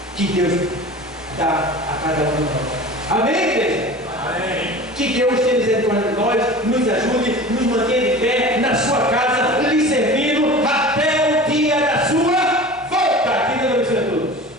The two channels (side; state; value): both; normal; correlation 0.37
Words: que Deus dá a cada um de nós. Amém, igreja? Amém. Que Deus tenha misericórdia de nós, nos ajude, nos mantenha de pé na sua casa.